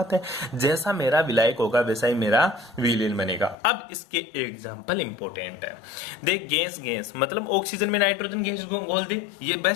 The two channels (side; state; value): right; drops out; at 3.6 s